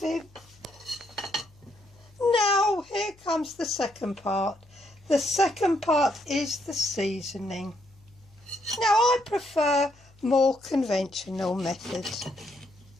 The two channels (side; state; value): left; noise; hum, 28 dB below the sound